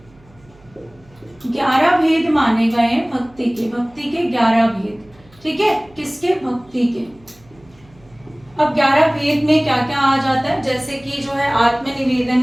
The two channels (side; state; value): right; noise; hum, 28 dB below the sound